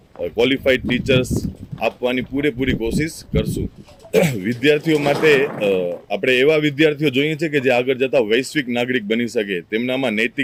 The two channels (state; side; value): identical; both; correlation 1.00